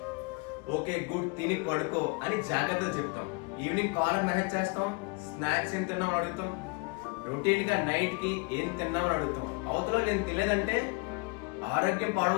ఓకే గుడ్, తిని పడుకో అని జాగ్రత్తలు చెప్తాం. ఈవినింగ్ కాలర్ మెసేజ్ చేస్తాం, స్నాక్స్ ఏం తిన్నామని అడుగుతాం. రొటీన్ గా నైట్ కి ఏం తిన్నామని అడుగుతాం. అవతలో నేను తినలేదంటే ఆరోగ్యం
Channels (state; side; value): quieter; right; 30.6 dB